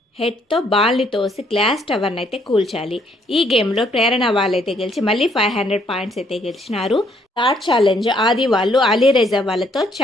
హెడ్తో బాల్ని తోసి గ్లాస్ టవర్ని అయితే కూల్చాలి. ఈ గేమ్లో ప్రేరణ వాళ్ళైతే గెలిచి మళ్ళీ 500 పాయింట్స్ అయితే గెలిచినారు. థర్డ్ ఛాలెంజ్ ఆది వాళ్ళు అలీరేజా వాళ్ళతో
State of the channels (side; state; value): both; normal; correlation 0.68